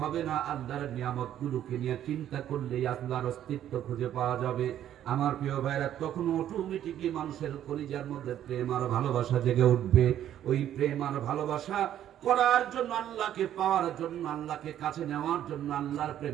হবে না, আল্লাহর নিয়ামতগুলোকে নিয়ে চিন্তা করলেই আল্লাহর অস্তিত্ব খুঁজে পাওয়া যাবে। আমার প্রিয় ভাইরা, তখন অটোমেটিকলি মানুষের কলিজার মধ্যে প্রেম আর ভালোবাসা জেগে উঠবে। ওই প্রেম আর ভালোবাসা করার জন্য, আল্লাহকে পাওয়ার জন্য, আল্লাহকে কাছে নেওয়ার জন্য, আল্লাহর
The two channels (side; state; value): left; quieter; 11.2 dB